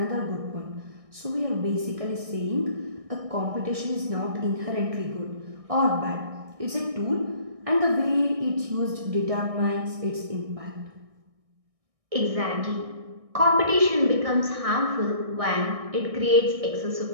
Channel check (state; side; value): late; left; 1.6 ms